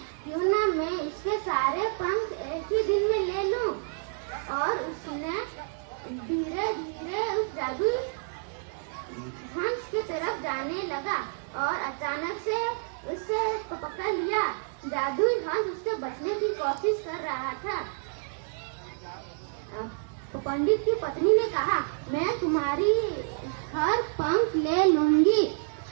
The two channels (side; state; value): left; silent; 59 dB below the other